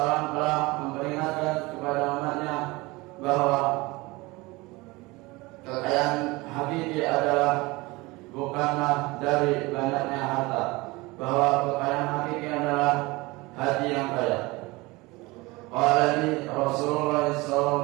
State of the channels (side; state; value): left; quieter; 22.7 dB